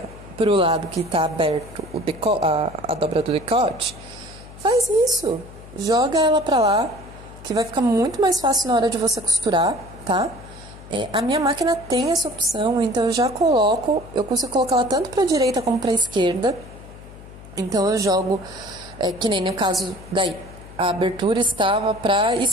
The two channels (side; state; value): left; noise; hum, 17 dB below the sound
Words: pro lado que tá aberto a dobra do decote, faz isso. Joga ela pra lá, que vai ficar muito mais fácil na hora de você costurar, tá? A minha máquina tem essa opção, então eu já coloco, eu consigo colocar ela tanto pra direita como pra esquerda. Então eu jogo, que nem no caso daí, a abertura estava pra